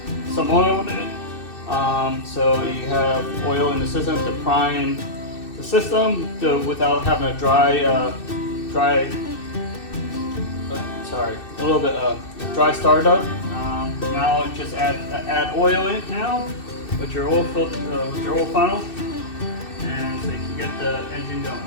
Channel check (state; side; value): late; right; 2.6 ms